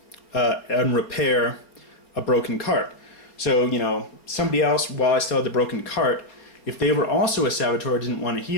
and repair a broken cart. So, somebody else, while I still had the broken cart, if they were also a saboteur, didn't want to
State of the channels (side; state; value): right; late; 4.2 ms